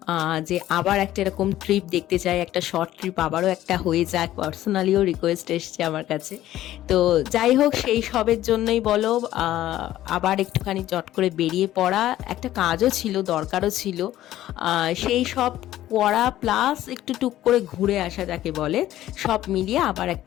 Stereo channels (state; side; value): quieter; right; 13.8 dB